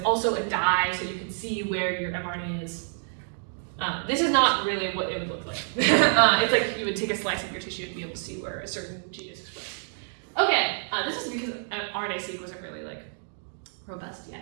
also a dye, so you can see where your mRNA is. This is not really what it would look like. It's like you would take a slice of your tissue and be able to see where a certain gene is expressed. Okay, this is because RNA-seq wasn't really like robust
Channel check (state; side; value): silent; left; digital silence